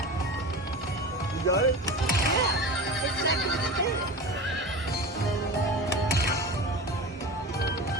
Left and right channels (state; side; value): normal; both; correlation 0.30